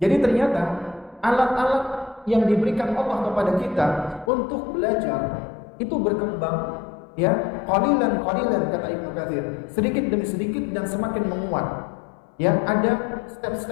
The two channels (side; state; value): right; drops out; at 4.3 s